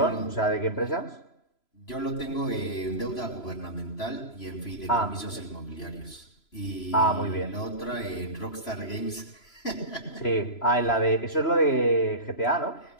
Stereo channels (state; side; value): late; right; 3.0 ms